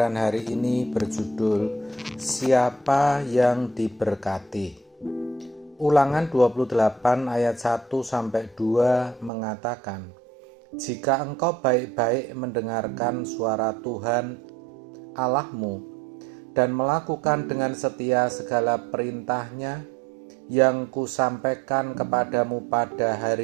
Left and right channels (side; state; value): left; drops out; at 9.3 s